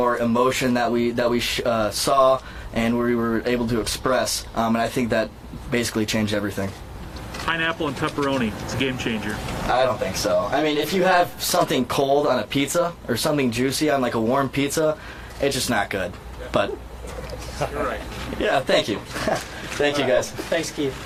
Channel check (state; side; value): identical; both; correlation 1.00